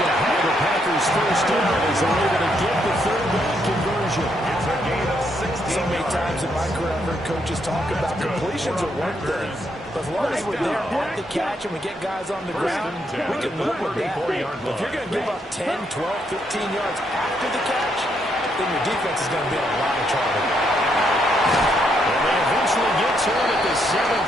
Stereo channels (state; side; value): normal; both; correlation 0.76